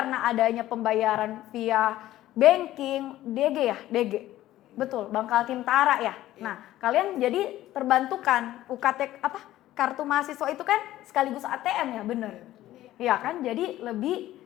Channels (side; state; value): right; quieter; 14.5 dB